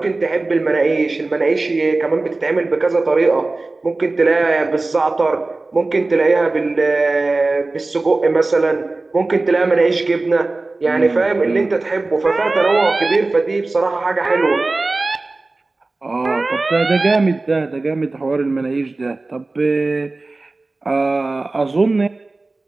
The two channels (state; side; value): quieter; left; 3.3 dB